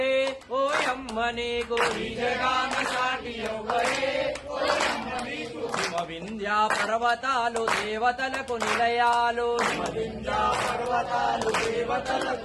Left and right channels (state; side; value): identical; both; correlation 1.00